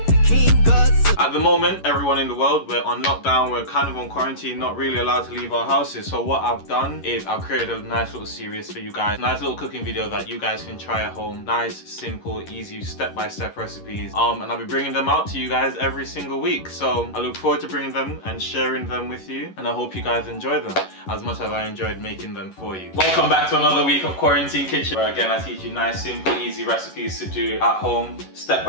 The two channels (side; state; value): right; late; 11 ms